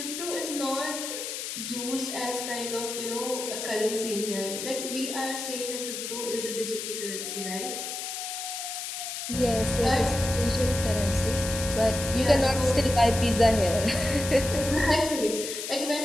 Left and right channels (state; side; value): noise; left; hiss, 6 dB below the sound